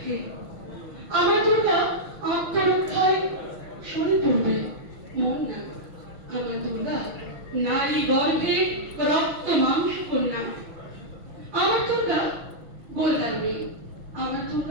আমার দুর্গা আত্মরক্ষায় সরে পড়বে মন না। আমার দুর্গা নারী গর্ভে রক্ত মাংস কন্যা। আমার দুর্গা গোলদার মেয়ে, আমার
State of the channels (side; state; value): left; late; 6.1 ms